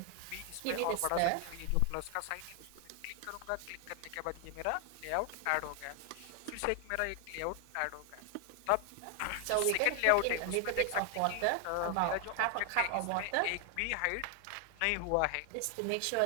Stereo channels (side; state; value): both; different; correlation 0.00